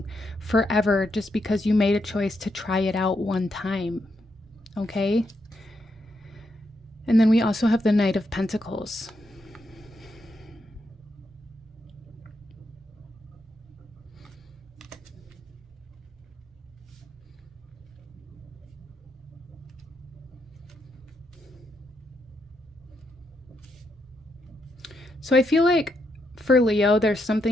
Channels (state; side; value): normal; both; correlation 0.80